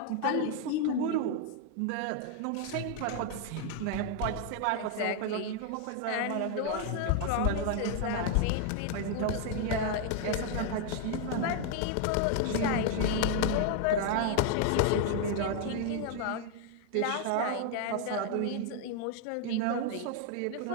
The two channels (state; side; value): different; both; correlation 0.00